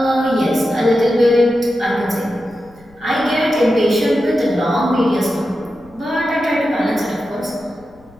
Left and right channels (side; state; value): left; noise; rumble, 28 dB below the sound